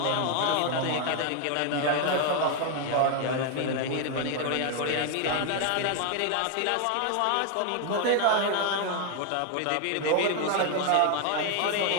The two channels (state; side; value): different; both; correlation 0.01